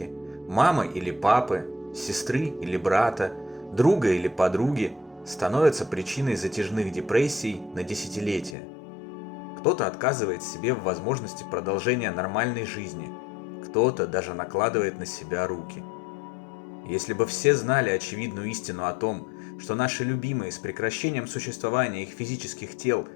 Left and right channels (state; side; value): drops out; right; at 8.6 s